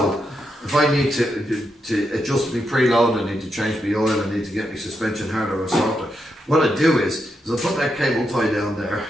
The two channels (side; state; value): both; normal; correlation 0.83